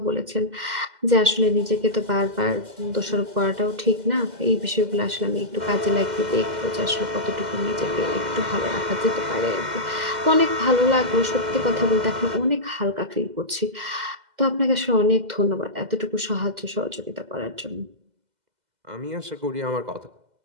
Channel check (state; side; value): late; left; 2.0 ms